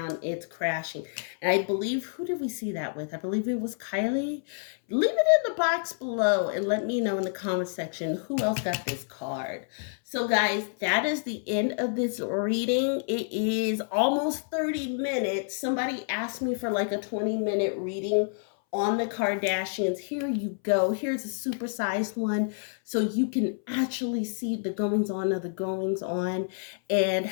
It's crashing. And I believe, who did we see that with? I believe it was Kylie. Leave it in the box below and let me know in the comment section who else got this card. So guys, that is the end of this reading. It is almost 30 minutes. Somebody asked me for like a 20-minute reading on the Kardashians. Here you go. Here's a supersized one so you can actually see the goings on of the goings on and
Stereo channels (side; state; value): right; silent; 59 dB below the other